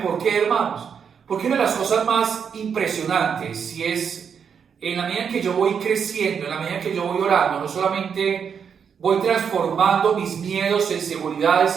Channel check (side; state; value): left; quieter; 7.0 dB